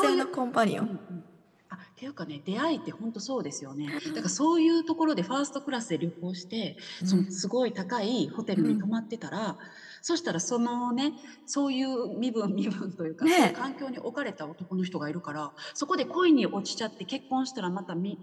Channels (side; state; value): both; identical; correlation 1.00